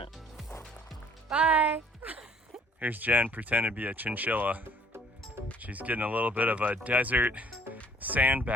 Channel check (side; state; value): both; normal; correlation 0.57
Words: Bye. Here's Jen pretending to be a chinchilla. She's getting a little bit of a desert sand